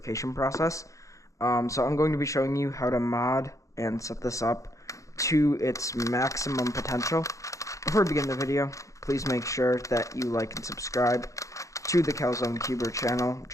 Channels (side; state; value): right; late; 0.15 ms